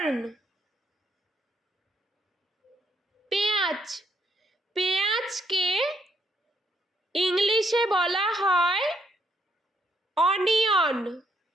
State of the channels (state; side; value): normal; both; correlation 0.73